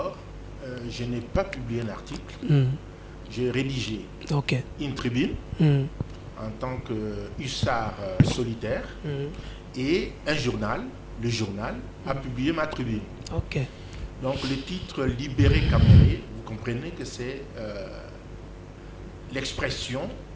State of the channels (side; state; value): both; identical; correlation 1.00